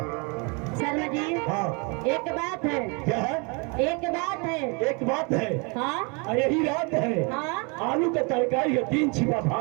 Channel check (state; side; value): quieter; left; 32.1 dB